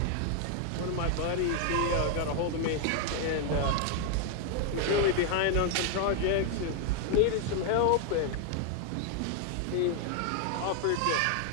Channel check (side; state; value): both; different; correlation 0.00